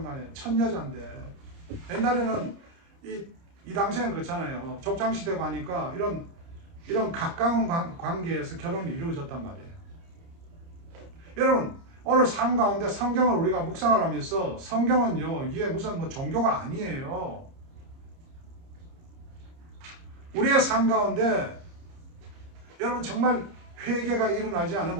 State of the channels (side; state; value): left; late; 30 ms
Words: 간에 첫 여자인데. 옛날에는 이 당시에는 그렇잖아요. 족장시대고 하니까 이런 가까운 관계에서 결혼이 이루어졌단 말이에요. 여러분 오늘 삶 가운데 성경을 우리가 묵상을 하면서 성경은요 이게 무슨 뭐 종교가 아니에요. 우리의 삶 가운데 여러분 정말 회개가 일어나지 않으면